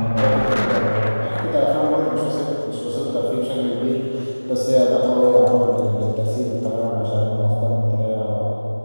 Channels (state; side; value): inverted; both; correlation -1.00